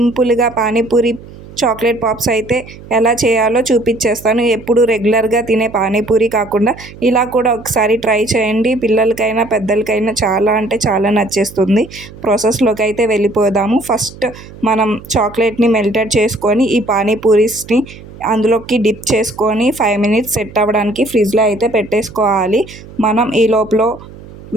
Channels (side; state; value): right; noise; hum, 18 dB below the sound